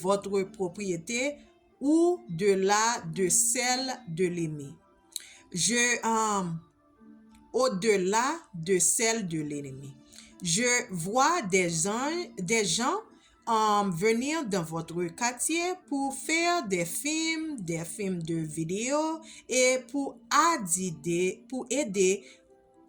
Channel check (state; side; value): identical; both; correlation 1.00